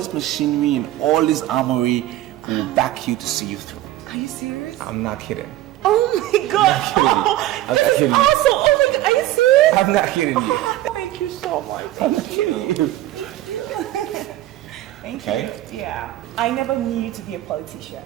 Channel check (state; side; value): quieter; left; 15.0 dB